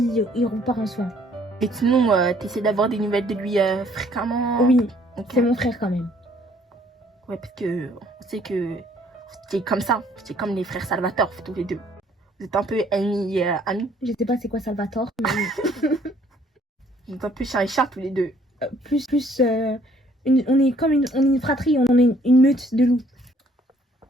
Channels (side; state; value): both; normal; correlation 0.62